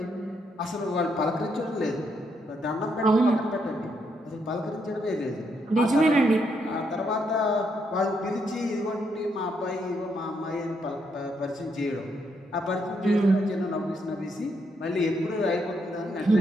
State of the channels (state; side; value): normal; both; correlation 0.77